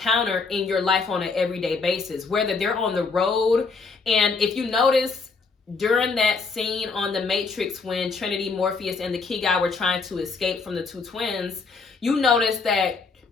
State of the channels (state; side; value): quieter; right; 4.5 dB